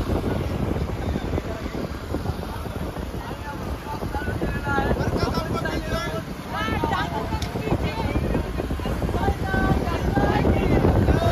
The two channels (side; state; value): both; identical; correlation 1.00